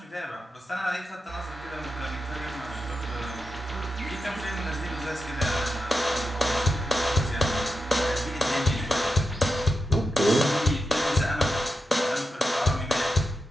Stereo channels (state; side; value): normal; both; correlation 0.88